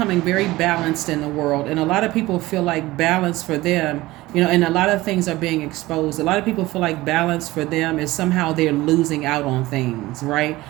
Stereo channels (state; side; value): quieter; left; 18.6 dB